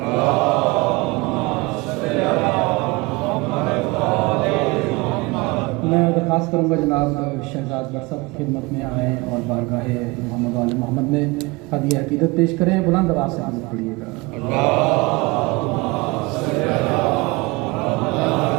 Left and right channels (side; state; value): left; quieter; 24.4 dB